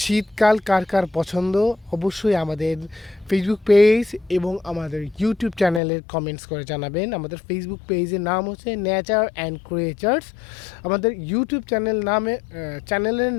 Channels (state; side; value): drops out; right; at 5.8 s